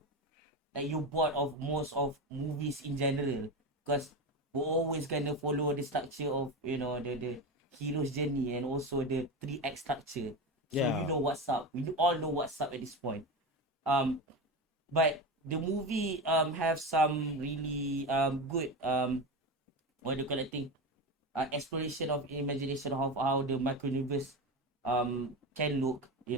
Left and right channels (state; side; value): normal; both; correlation 0.21